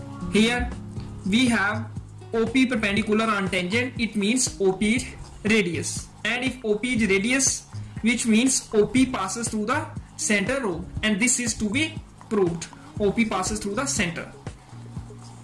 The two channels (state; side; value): identical; both; correlation 1.00